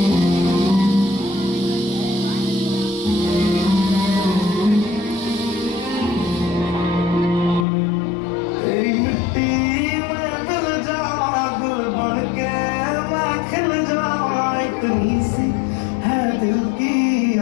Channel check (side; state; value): right; drops out; at 7.7 s